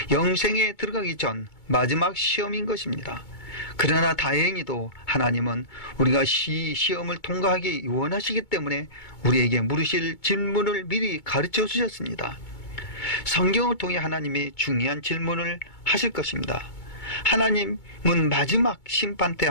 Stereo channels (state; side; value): late; right; 2.2 ms